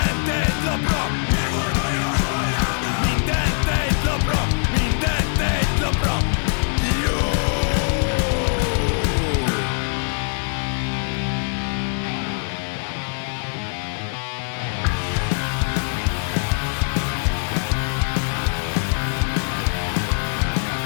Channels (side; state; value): right; silent; 64 dB below the other